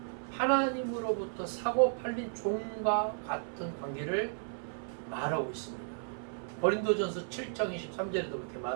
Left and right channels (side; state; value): left; silent; 55 dB below the other